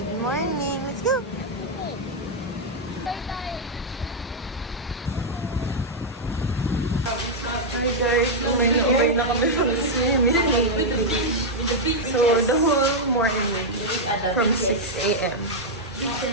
morning. Let's go. Hi guys, umay na kami from the swimming. So the whole morning from 6 a.m.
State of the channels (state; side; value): normal; both; correlation -0.03